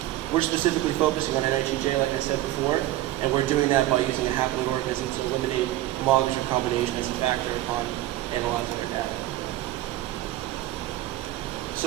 We're specifically focusing on NHEJ, like I said before, and we're doing that by using a haploid organism to eliminate homologous recombination as a factor upon analyzing our data.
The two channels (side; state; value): left; quieter; 15.4 dB